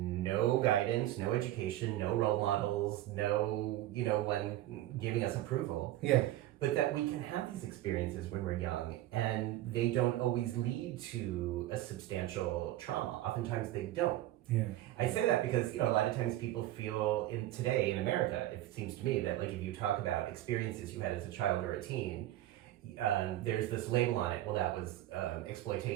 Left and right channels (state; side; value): quieter; left; 14.5 dB